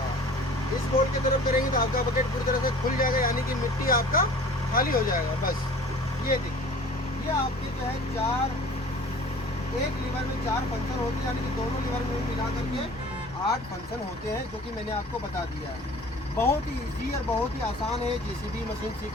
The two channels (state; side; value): normal; both; correlation 0.45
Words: है। इस बोल्ट की तरफ करेंगे तो आपका पॉकेट पूरी तरह से खुल जाएगा, यानी कि मिट्टी आपका खाली हो जाएगा। बस ये देखिए, ये आपके जो है 4, एक लीवर में 4 फंक्शन होते हैं, यानी कि दोनों लीवर में मिला करके 8 फंक्शन होते हैं, जो कि मैंने आपको बता दिया है। बहुत ही ईजी और बहुत ही आसान है जेसीबी मशीन